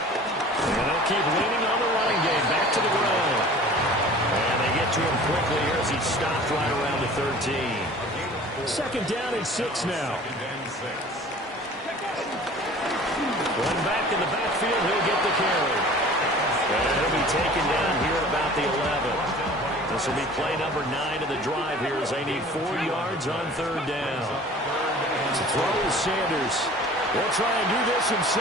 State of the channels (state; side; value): normal; both; correlation 0.45